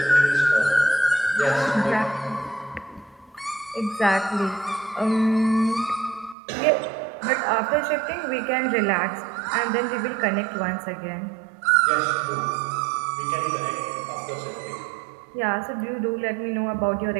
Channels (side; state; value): left; drops out; at 6.4 s